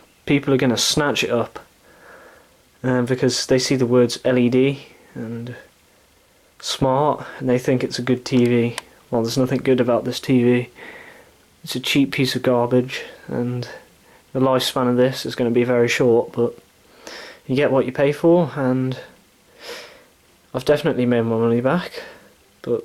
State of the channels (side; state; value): both; identical; correlation 1.00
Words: people are going to snatch it up because they see the words LED and smart and they think it's a good TV. Well, there's nothing good about this TV. It's a cheap piece of garbage, and the lifespan of this is going to be very short, but you get what you pay for, and I've definitely made my money back.